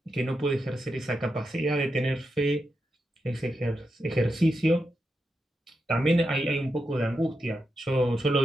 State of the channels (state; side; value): normal; both; correlation 0.86